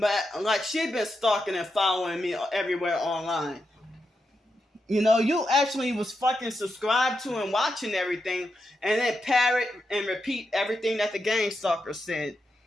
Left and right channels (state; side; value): normal; both; correlation 0.86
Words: like, she been stalking and following me everywhere online. You know, you actually was fucking subscribed to and watching everything, and then parrot and repeat everything that the gang stalker said.